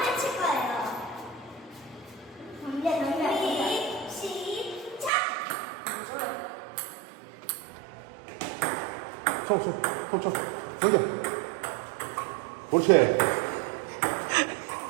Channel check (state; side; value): drops out; left; at 5.1 s